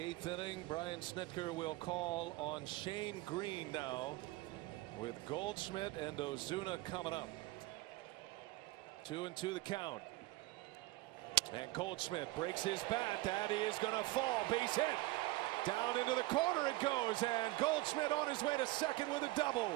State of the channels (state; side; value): quieter; left; 19.7 dB